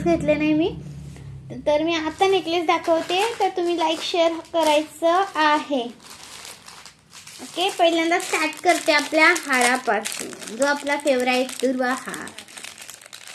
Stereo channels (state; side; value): identical; both; correlation 1.00